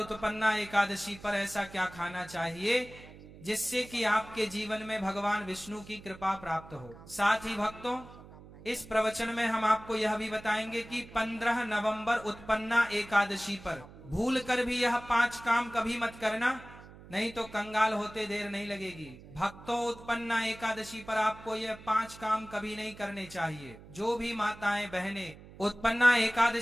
एकादशी पर ऐसा क्या खाना चाहिए जिससे कि आपके जीवन में भगवान विष्णु की कृपा प्राप्त हो। साथ ही भक्तों, इस प्रवचन में हम आपको यह भी बताएंगे कि 15 नवंबर उत्पन्ना एकादशी पर भूल कर भी यह 5 काम कभी मत करना, नहीं तो कंगाल होते देर नहीं लगेगी। भक्तों, उत्पन्ना एकादशी पर आपको यह 5 काम कभी नहीं करने चाहिए। जो भी माताएं बहनें उत्पन्ना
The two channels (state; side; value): noise; right; hum, 18 dB below the sound